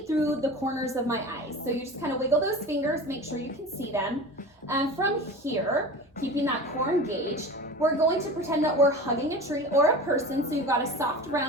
through the corners of my eyes. So you just kind of wiggle those fingers, make sure you can see them. And from here, keeping that core engaged, we're going to pretend that we're hugging a tree or a person. So you've got a soft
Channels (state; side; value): normal; both; correlation 0.34